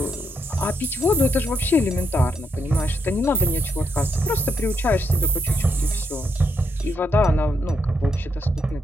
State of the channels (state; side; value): normal; both; correlation 0.79